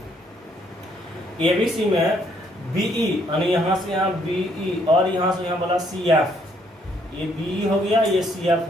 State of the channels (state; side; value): normal; both; correlation 0.69